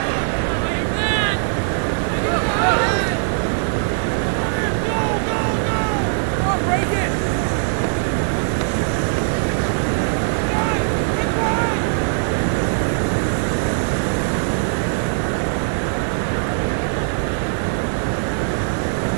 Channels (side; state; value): left; silent; digital silence